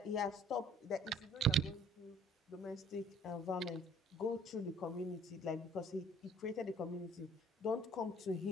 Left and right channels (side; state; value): both; normal; correlation 0.56